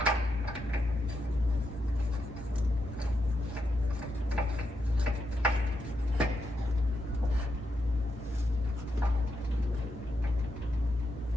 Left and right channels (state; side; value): normal; both; correlation 0.83